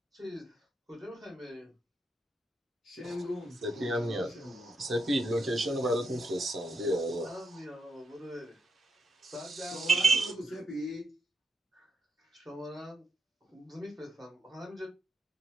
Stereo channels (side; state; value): both; normal; correlation 0.83